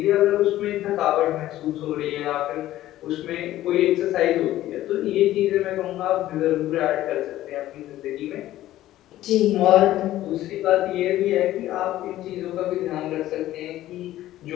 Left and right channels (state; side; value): quieter; right; 14.3 dB